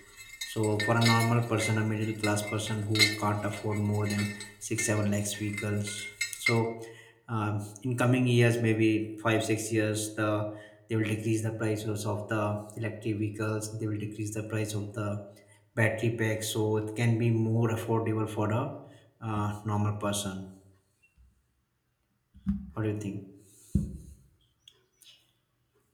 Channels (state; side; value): identical; both; correlation 1.00